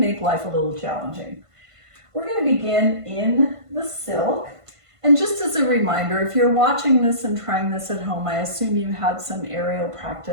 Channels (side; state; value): left; late; 1.5 ms